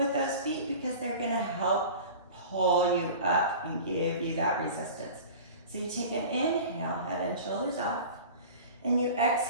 those feet because they're gonna help pull you up and give you that resistance. So you take an inhale, head and shoulders off, and you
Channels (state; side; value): inverted; both; correlation -0.38